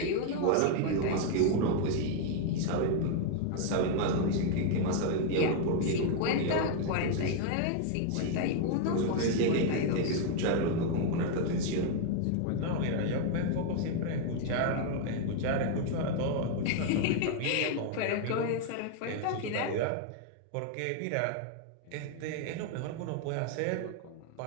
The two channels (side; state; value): both; different; correlation 0.00